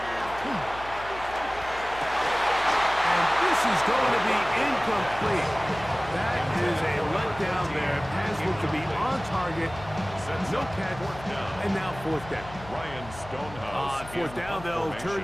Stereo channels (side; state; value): left; noise; hum, 16 dB below the sound